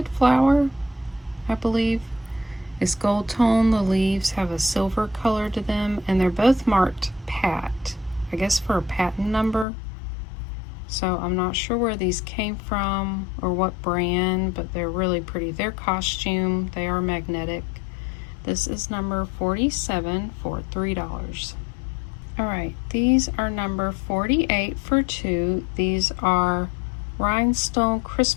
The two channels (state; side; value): drops out; right; at 9.7 s